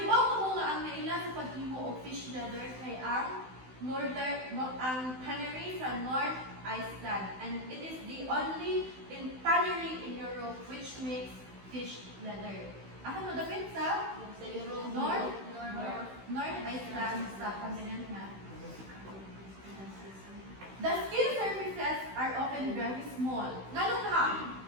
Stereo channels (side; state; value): left; late; 16 ms